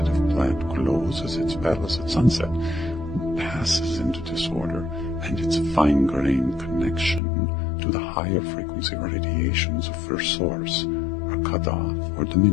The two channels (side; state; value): right; drops out; at 7.2 s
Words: plant closes its petals at sunset, passes into disorder, and its fine-grained connection to the higher frequency radiations of First Source are cut off or